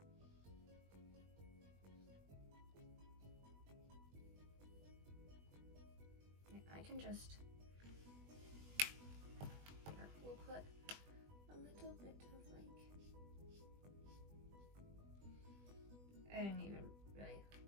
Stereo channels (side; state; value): left; late; 20 ms